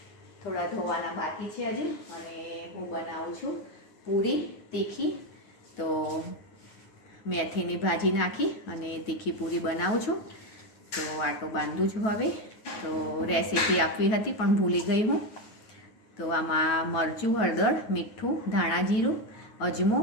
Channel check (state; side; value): late; right; 9.3 ms